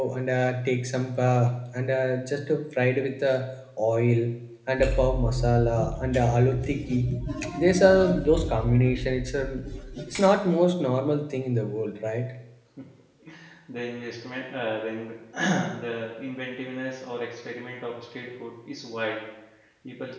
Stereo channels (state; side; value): identical; both; correlation 1.00